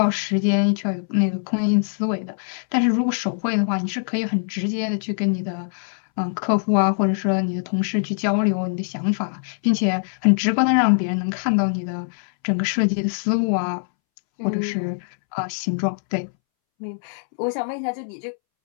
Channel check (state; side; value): silent; right; 64 dB below the other